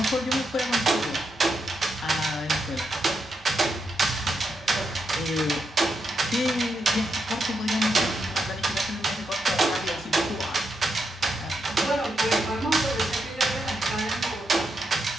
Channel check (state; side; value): normal; both; correlation 0.82